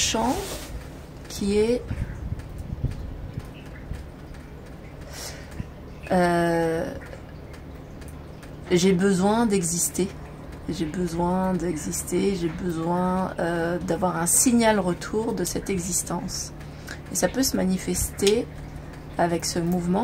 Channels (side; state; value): both; identical; correlation 1.00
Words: qui est j'ai besoin d'exister. J'ai besoin d'exister, j'ai besoin d'avoir un signal retour de cette existence. Et ça peut se manifester avec ce